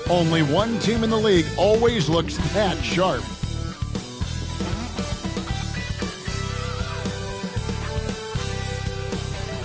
Only one team in the league always looks that sharp.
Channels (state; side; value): identical; both; correlation 1.00